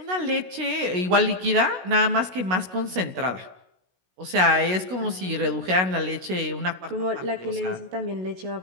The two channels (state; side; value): late; left; 16 ms